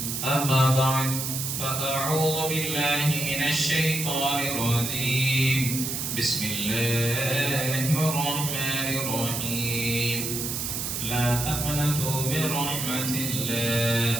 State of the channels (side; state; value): right; noise; hiss, 3 dB below the sound